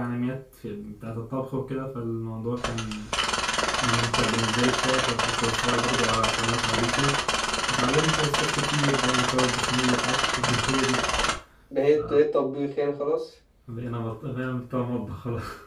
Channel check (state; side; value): identical; both; correlation 1.00